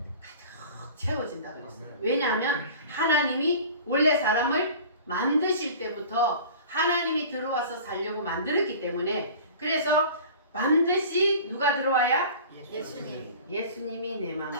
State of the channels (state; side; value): inverted; both; correlation -0.41